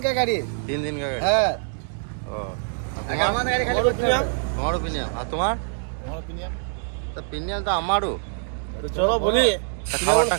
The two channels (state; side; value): silent; left; digital silence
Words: গাড়ি। 3 দিনকার গাড়ি? হ্যাঁ। ও আমাদের গাড়ি খালি করতে হবে। তোমারও প্রিমিয়াম? আর তোমার? আমারও প্রিমিয়াম। তো প্রিমিয়াম তো আমারও। চলো বলি খাবারটা